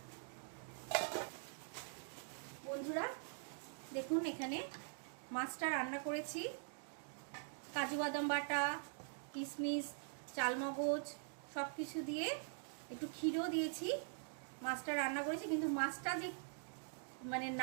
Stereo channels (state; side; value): silent; left; digital silence